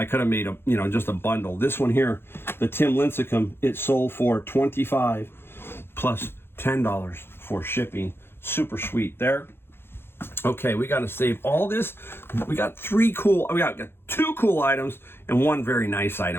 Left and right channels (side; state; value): right; late; 0.11 ms